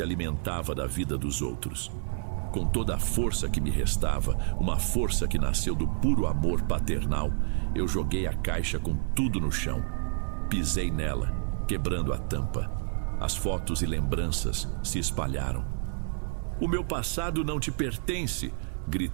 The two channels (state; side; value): silent; left; 59 dB below the other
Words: alimentava da vida dos outros. Com toda a força que me restava, uma força que nasceu do puro amor paternal, eu joguei a caixa com tudo no chão. Pisei nela, quebrando a tampa. As fotos e lembranças se espalharam. O meu passado não te pertence,